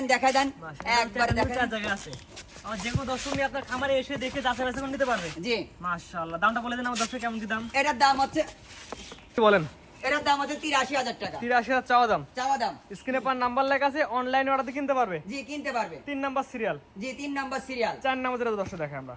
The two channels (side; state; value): both; identical; correlation 1.00